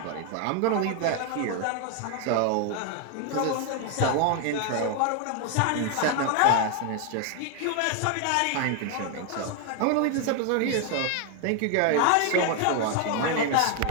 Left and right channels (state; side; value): different; both; correlation 0.00